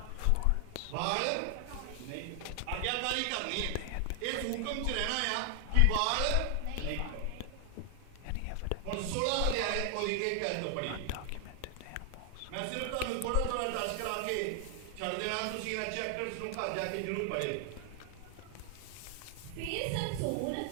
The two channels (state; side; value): different; both; correlation 0.00